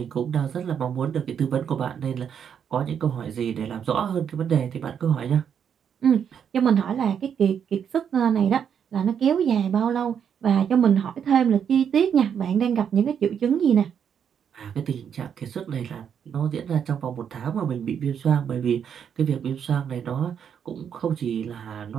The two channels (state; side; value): quieter; left; 8.0 dB